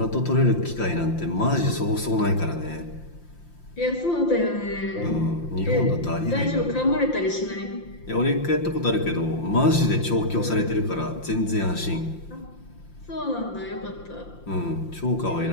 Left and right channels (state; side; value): late; right; 5.8 ms